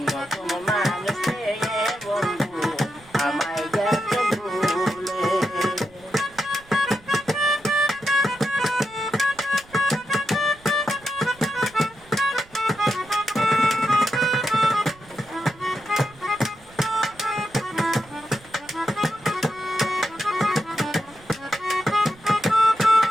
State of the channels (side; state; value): right; noise; rumble, 25 dB below the sound